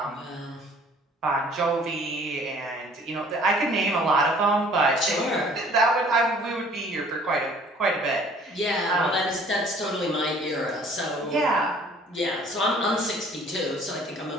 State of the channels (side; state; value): both; normal; correlation 0.54